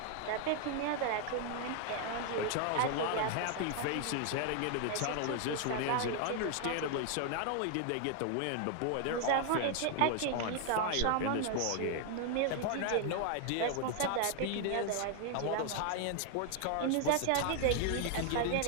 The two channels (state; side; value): different; both; correlation 0.00